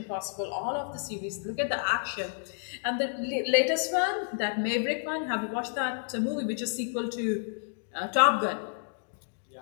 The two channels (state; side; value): silent; right; digital silence